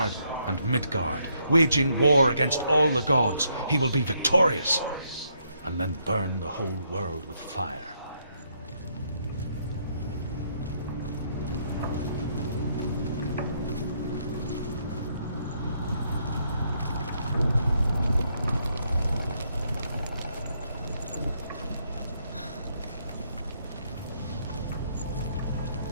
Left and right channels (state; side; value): inverted; both; correlation -0.74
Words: and Midgard, waging war against all the gods. He will be victorious, and then burn the whole world with fire.